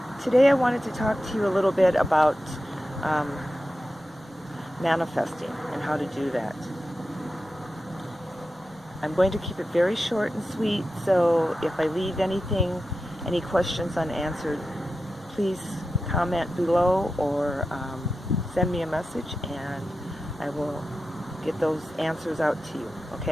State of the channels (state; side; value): normal; both; correlation 0.91